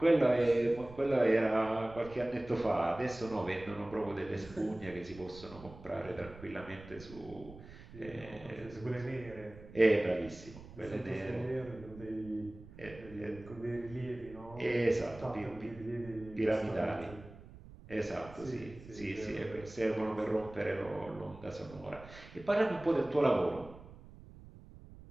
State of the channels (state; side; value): noise; right; rumble, 18 dB below the sound